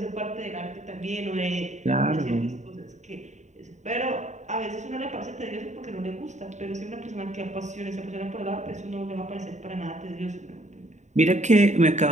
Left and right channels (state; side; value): late; left; 0.34 ms